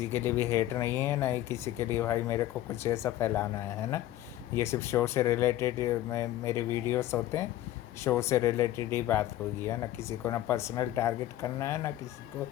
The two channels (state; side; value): quieter; right; 14.2 dB